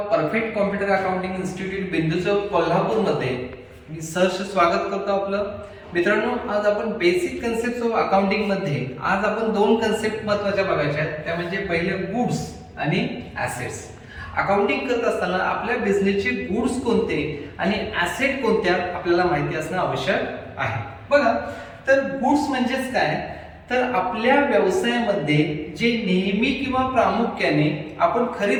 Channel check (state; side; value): identical; both; correlation 1.00